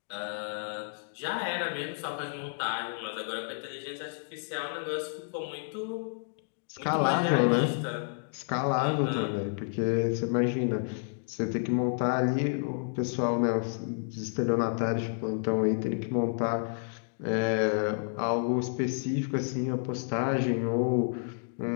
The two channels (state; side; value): silent; right; digital silence